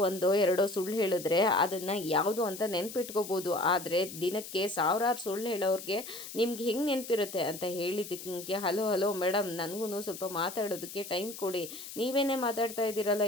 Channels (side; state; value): left; noise; hiss, 11 dB below the sound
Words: 1-2 ಸುಳ್ಳು ಹೇಳಿದ್ರೆ ಅದನ್ನು ಯಾವುದು ಅಂತ ನೆನ್ಪಿಟ್ಕೋಬೋದು, ಆದರೆ ದಿನಕ್ಕೆ 1000 ಸುಳ್ಳು ಹೇಳೋರಿಗೆ ನಿಮ್ಗೆ ಹೆಂಗೆ ನೆನಪಿರುತ್ತೆ ಅಂತ ಹೇಳಿದ್ದಕ್ಕೆ, ಹಲೋ ಮೇಡಮ್, ನನಗೂ ಸ್ವಲ್ಪ ಮಾತಾಡೋದಕ್ಕೆ ಟೈಮ್ ಕೊಡಿ, ನೀವೇನೇ ಮಾತಾಡ್ತಾ ಇದ್ದೀರಲ್ಲ,